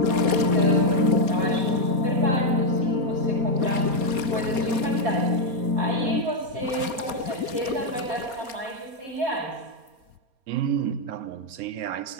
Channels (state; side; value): late; left; 4.3 ms